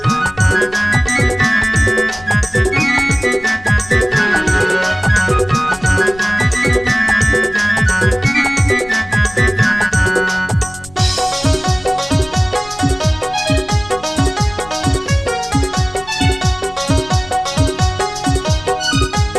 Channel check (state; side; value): noise; left; rumble, 20 dB below the sound